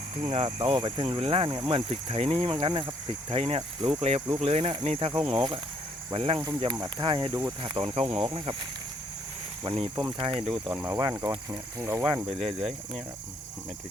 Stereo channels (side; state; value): both; normal; correlation 0.67